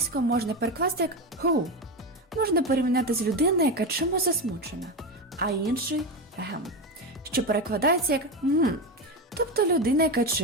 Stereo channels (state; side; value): normal; both; correlation 0.16